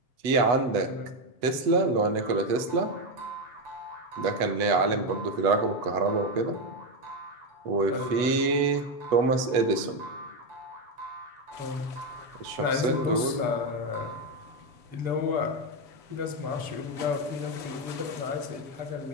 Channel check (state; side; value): late; left; 8.1 ms